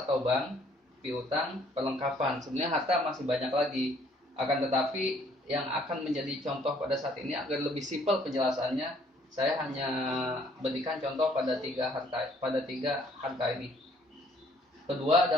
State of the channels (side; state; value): both; normal; correlation 0.62